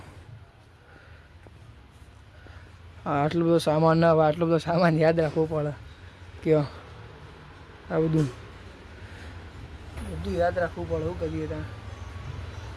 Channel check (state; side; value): identical; both; correlation 1.00